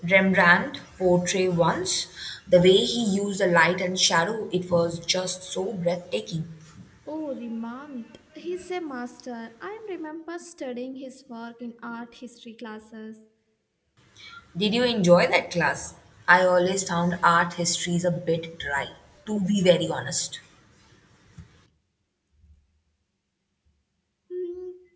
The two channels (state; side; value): identical; both; correlation 1.00